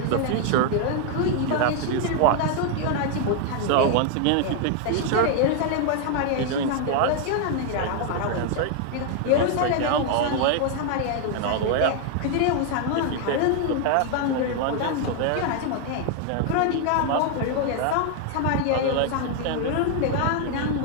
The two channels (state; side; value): different; both; correlation 0.00